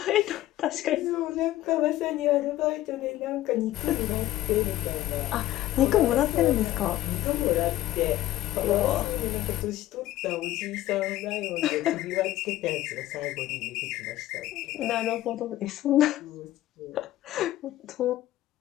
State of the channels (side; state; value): right; quieter; 14.9 dB